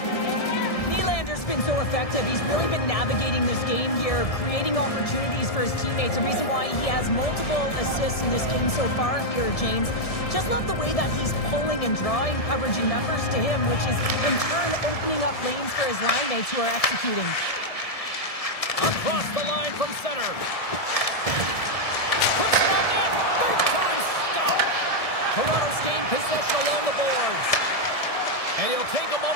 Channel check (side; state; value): right; late; 1.7 ms